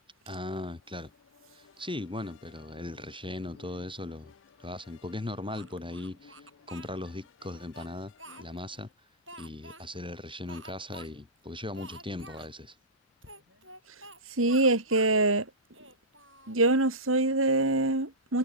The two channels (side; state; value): both; normal; correlation -0.10